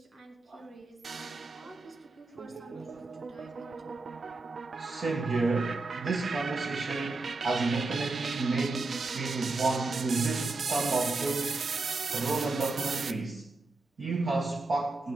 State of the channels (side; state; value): left; quieter; 3.4 dB